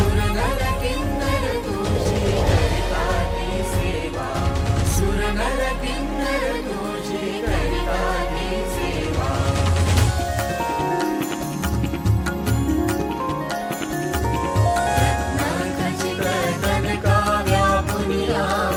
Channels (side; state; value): both; identical; correlation 1.00